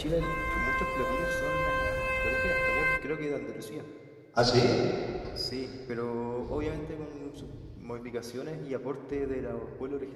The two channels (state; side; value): identical; both; correlation 1.00